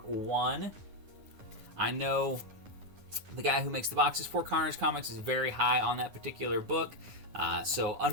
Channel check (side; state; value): left; late; 9.8 ms